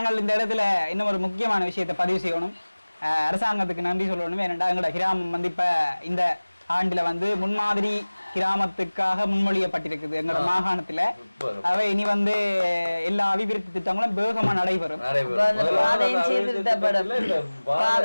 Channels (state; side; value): inverted; both; correlation -1.00